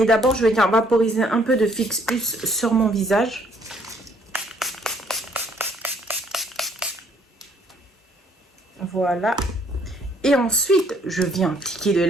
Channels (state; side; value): normal; both; correlation 0.64